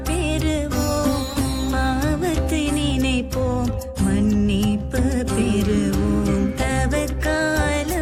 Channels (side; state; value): both; identical; correlation 1.00